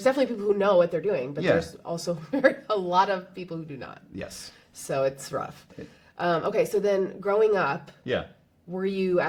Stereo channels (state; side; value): identical; both; correlation 1.00